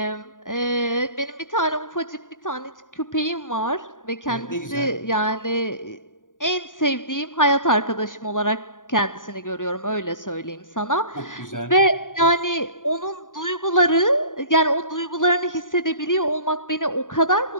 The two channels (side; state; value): right; late; 0.88 ms